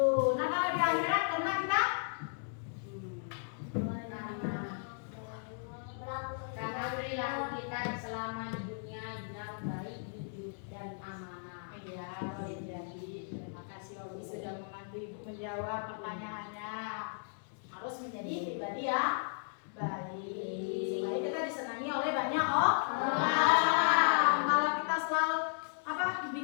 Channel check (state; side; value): silent; right; digital silence